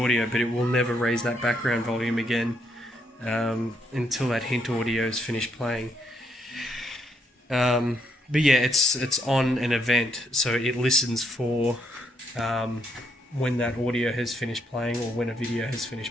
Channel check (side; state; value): both; normal; correlation 0.76